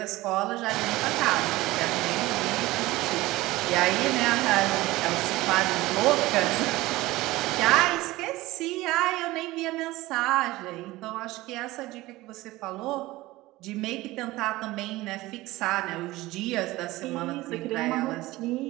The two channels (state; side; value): quieter; left; 18.8 dB